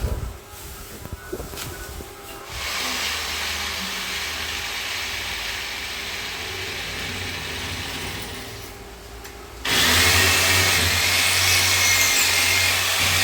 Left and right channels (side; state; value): both; identical; correlation 1.00